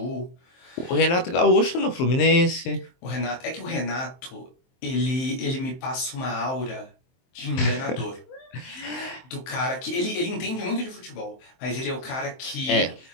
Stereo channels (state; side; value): late; right; 23 ms